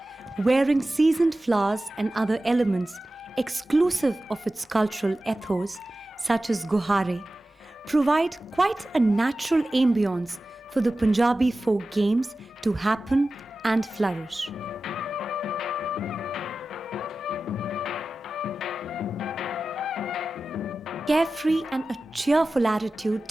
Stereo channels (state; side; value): normal; both; correlation 0.95